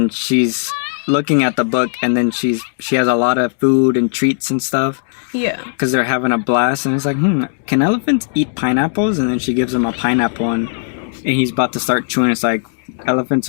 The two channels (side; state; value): right; silent; digital silence